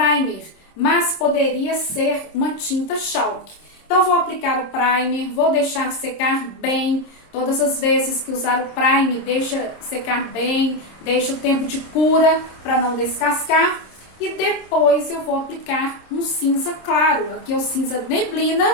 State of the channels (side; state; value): right; late; 26 ms